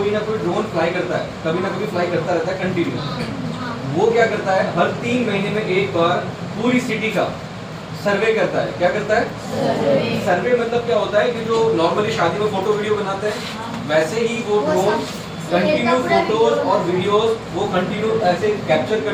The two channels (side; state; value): both; identical; correlation 1.00